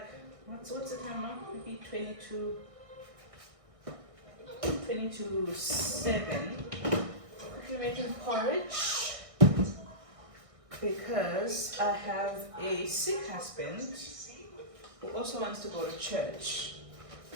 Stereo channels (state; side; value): late; left; 1.6 ms